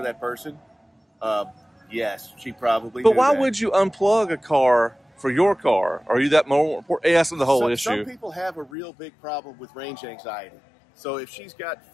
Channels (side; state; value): right; drops out; at 8.7 s